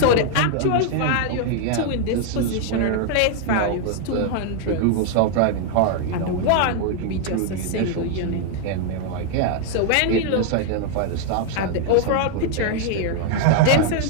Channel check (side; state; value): both; different; correlation 0.00